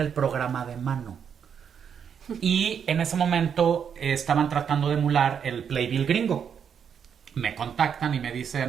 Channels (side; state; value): left; quieter; 7.6 dB